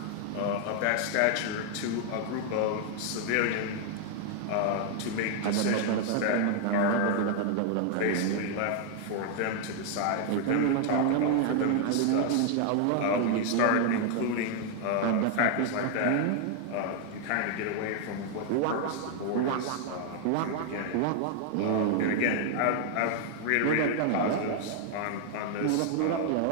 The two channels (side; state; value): both; different; correlation 0.00